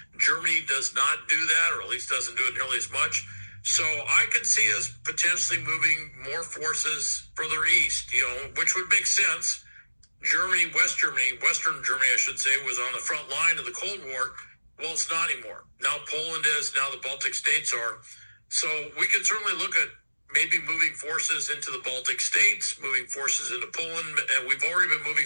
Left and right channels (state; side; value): inverted; both; correlation -1.00